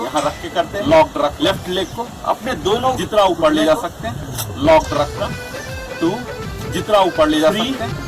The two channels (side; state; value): both; identical; correlation 1.00